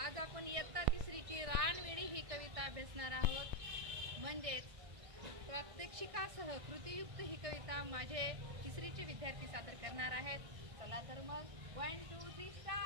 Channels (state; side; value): late; left; 1.6 ms